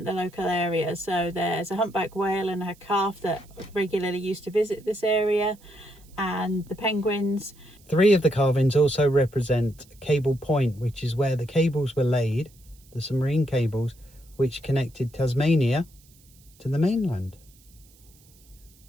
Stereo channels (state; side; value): noise; right; hiss, 28 dB below the sound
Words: the local area. So there's a humpback whale and her calf that regularly used to visit this area, and the penguins. 3 of the carvings also represent Cable Point, which is where the cables were laid, the submarine cables, which connected Tasmania to the mainland.